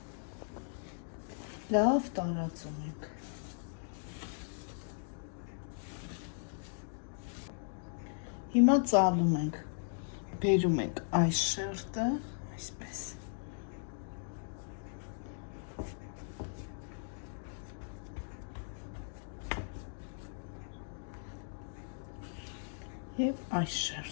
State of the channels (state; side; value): silent; right; digital silence